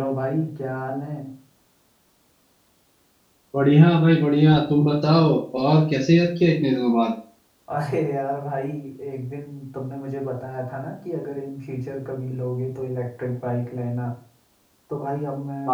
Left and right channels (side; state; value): both; identical; correlation 1.00